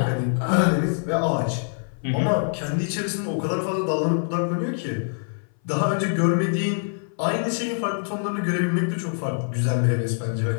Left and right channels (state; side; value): silent; right; 58 dB below the other